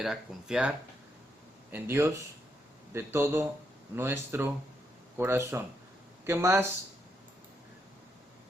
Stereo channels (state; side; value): normal; both; correlation 0.79